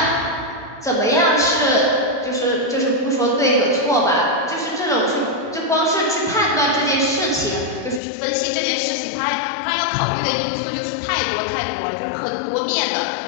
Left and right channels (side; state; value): right; drops out; at 8.0 s